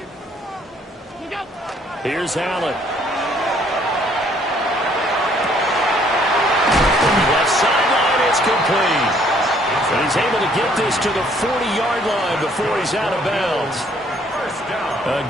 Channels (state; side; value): normal; both; correlation 0.63